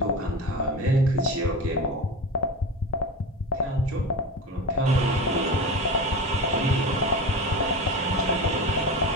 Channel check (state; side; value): normal; both; correlation 0.26